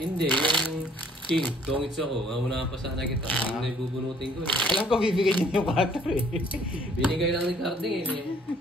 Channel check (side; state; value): both; normal; correlation 0.60